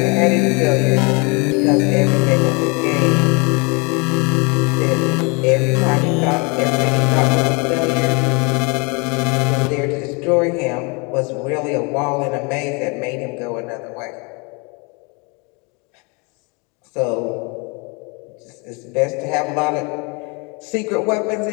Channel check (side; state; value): right; quieter; 31.0 dB